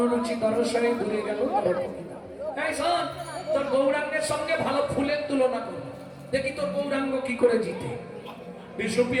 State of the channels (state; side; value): identical; both; correlation 1.00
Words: রুচি দর্শনে দূরে গেল দর্প কিতাব। এই শোন, তোর গৌরাঙ্গের সঙ্গে ভালো ফুলের তুলনা কর, দেখি তোর গৌরাঙ্গ কি করে জিতে।